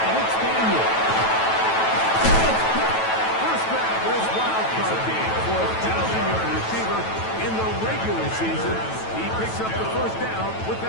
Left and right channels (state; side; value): late; right; 9.1 ms